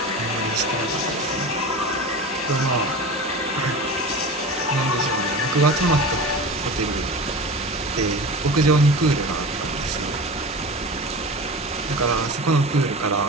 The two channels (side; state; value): both; normal; correlation 0.32